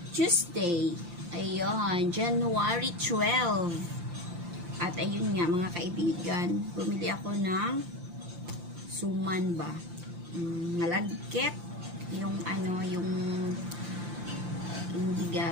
Tuesday. Ayun, January 12. At ayun nga mga kaibigan, bumili ako ng suman ba? Malagkit. Yung yung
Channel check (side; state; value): left; late; 5.8 ms